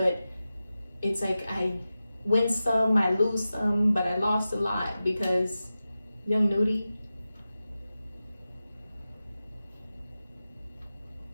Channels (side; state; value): both; inverted; correlation -0.93